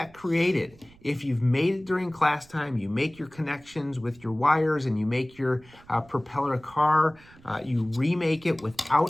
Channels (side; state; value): right; noise; rumble, 26 dB below the sound